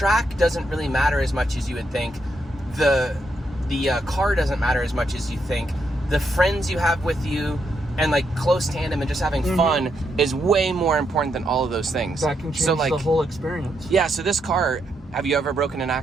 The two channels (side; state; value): both; normal; correlation 0.79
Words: doesn't really matter as much as you would think. The car doesn't matter as much as you think. The friends you have with you and like close tandem and just having fun is way more important than all of those things. That can change the whole experience. Yeah, so this car, have you ever broken an